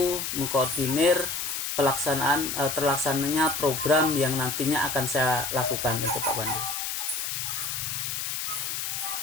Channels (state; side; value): noise; left; hiss, 3 dB below the sound